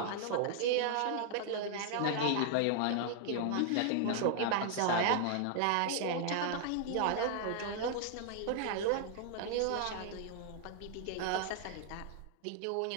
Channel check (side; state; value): both; different; correlation 0.00